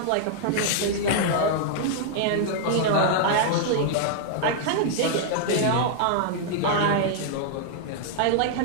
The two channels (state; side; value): different; both; correlation -0.01